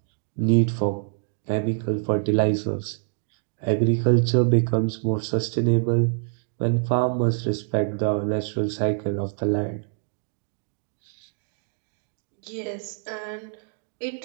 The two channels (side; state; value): left; silent; digital silence